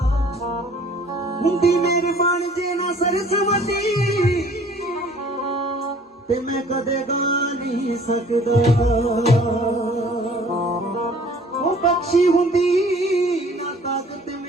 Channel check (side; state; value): both; normal; correlation 0.53